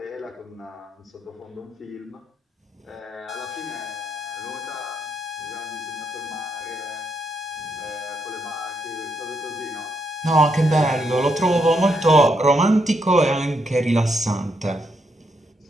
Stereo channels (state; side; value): normal; both; correlation 0.78